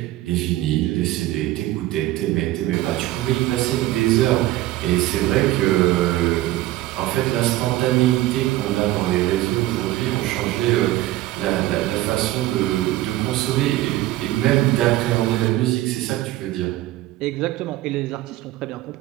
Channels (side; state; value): left; quieter; 16.0 dB